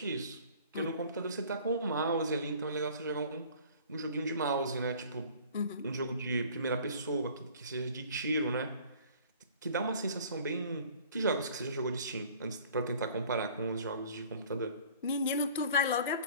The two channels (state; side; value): inverted; both; correlation -0.50